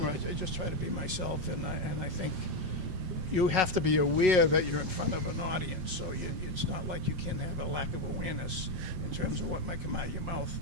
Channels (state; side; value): late; left; 7.5 ms